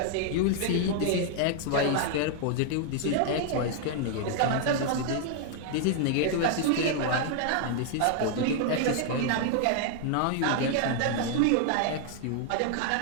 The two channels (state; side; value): different; both; correlation 0.00